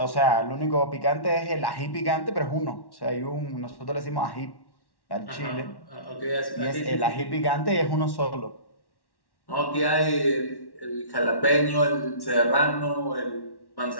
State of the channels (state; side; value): late; right; 1.1 ms